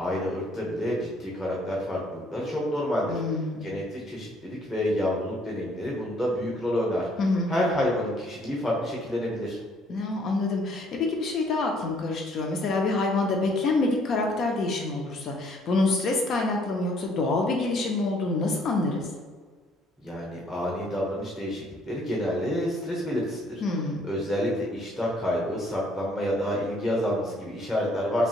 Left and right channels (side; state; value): both; normal; correlation 0.63